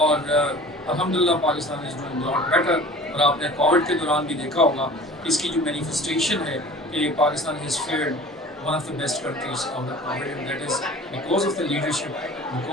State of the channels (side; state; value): both; normal; correlation 0.43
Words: الحمدللہ Pakistan is doing lot better. اور آپ نے کووڈ کے دوران بھی دیکھا ہوگا اس کی جو مینیفیسٹیشن ہے کہ Pakistan has feared one of the best countries out of poverty, and that is because of the leadership,